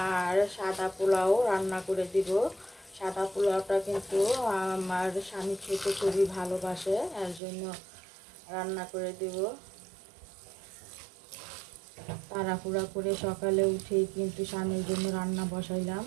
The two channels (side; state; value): left; drops out; at 7.4 s